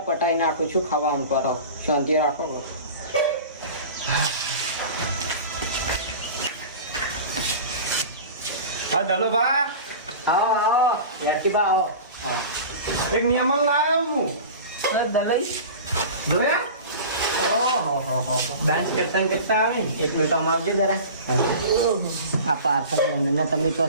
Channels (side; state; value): both; inverted; correlation -0.36